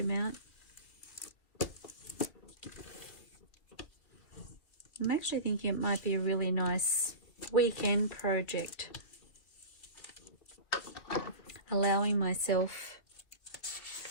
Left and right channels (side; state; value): right; late; 2.8 ms